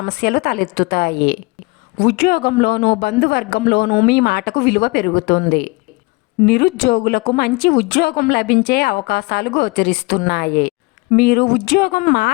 తలెత్తుతాయి. ఉద్యోగంలోనూ బంధువర్గంలోనూ మీ మాటకు విలువ పెరుగుతుంది. నిరుద్యోగులకు మంచి ఉద్యోగం లభించే అవకాశాలు గోచరిస్తున్నాయి. మీరు ఉద్యోగం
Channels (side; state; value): right; quieter; 25.9 dB